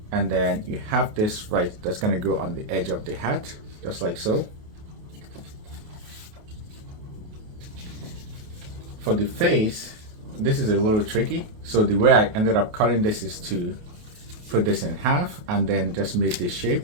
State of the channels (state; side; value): late; left; 28 ms